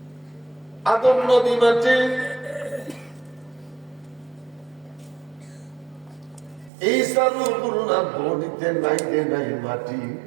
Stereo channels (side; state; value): left; drops out; at 6.7 s